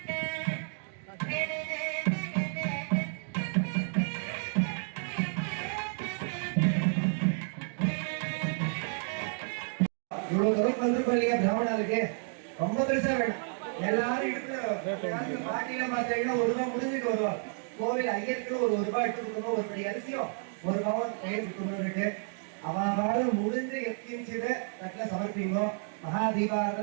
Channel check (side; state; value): left; silent; 56 dB below the other